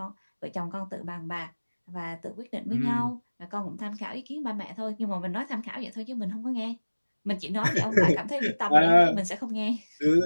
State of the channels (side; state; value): both; inverted; correlation -1.00